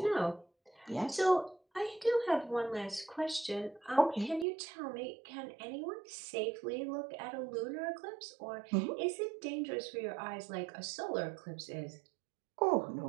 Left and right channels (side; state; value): left; drops out; at 4.5 s